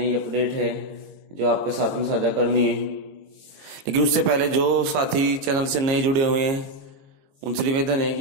अपडेट है जो आपके साथ में साझा करनी है। लेकिन उससे पहले जो साथी चैनल से नए जुड़े हुए हैं उनसे निवेदन है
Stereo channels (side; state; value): left; late; 22 ms